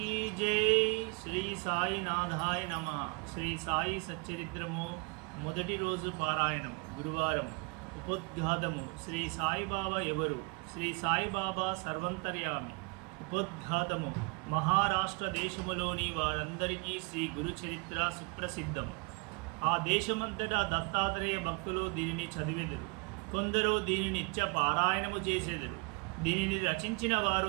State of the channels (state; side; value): quieter; left; 30.7 dB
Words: जय। శ్రీ సాయినాథాయ నమః। శ్రీ సాయి సచ్చరిత్రము మొదటి రోజు పారాయణం గురువారం ఉపోద్ఘాతము శ్రీ సాయిబాబా ఎవరు? శ్రీ సాయిబాబా సర్వంతర్యామి। ఉపోద్ఘాతము మహారాష్ట్ర దేశములోని వారందరికీ శ్రీ గురు చరిత్ర సుప్రసిద్ధం। ఆ దేశమంతటా దత్తాత్రేయ భక్తులు దీనిని చదివెదరు, కొందరు దీనిని నిత్య పారాయణము చేసేదరు। దీనిని రచించిన